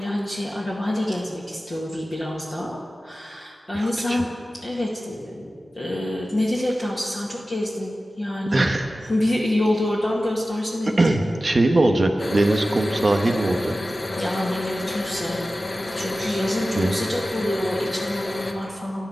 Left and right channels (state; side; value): normal; both; correlation 0.95